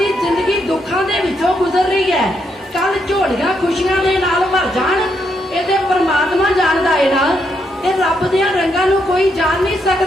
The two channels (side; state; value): both; normal; correlation 0.78